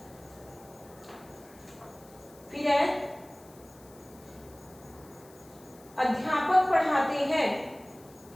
फिर है अध्यापक पढ़ाते हैं।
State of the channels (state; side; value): noise; left; hiss, 24 dB below the sound